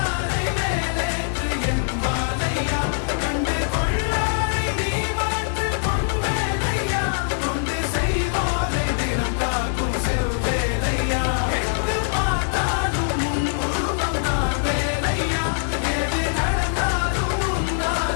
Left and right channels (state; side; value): silent; right; digital silence